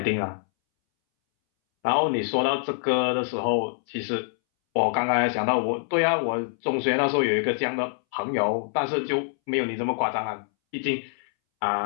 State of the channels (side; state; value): right; silent; 61 dB below the other